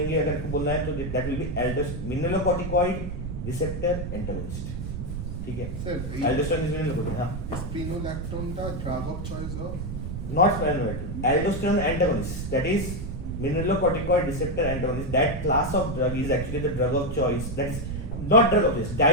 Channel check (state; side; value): noise; right; rumble, 5 dB below the sound